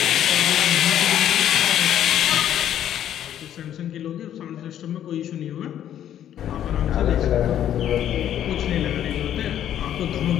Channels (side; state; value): right; quieter; 10.7 dB